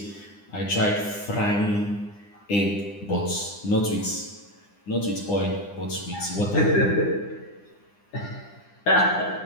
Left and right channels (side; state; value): right; late; 9.9 ms